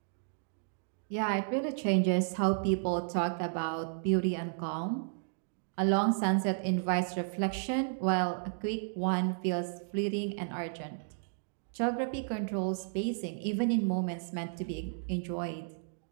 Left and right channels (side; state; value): left; silent; digital silence